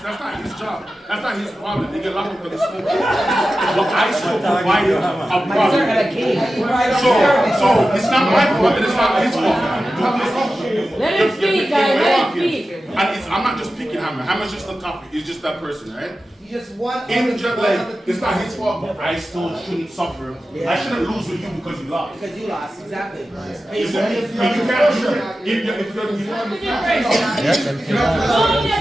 not his job. That's not his problem. They get locked up because of smoking. But I still provided a product. So it's not my fault and it's not his fault. Let him speak, guys. Let him speak. And I'm not just picking Hammer. Hammer's just a copy. It's just that person, right? Just one. It's not his fault, but I still shouldn't suffer. Yeah. I shouldn't lose with you because you lost. Because you lost, exactly. You can't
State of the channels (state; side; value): normal; both; correlation 0.93